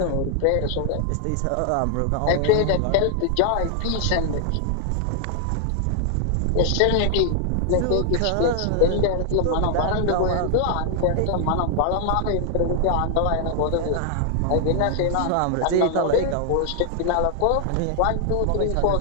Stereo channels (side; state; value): both; different; correlation 0.00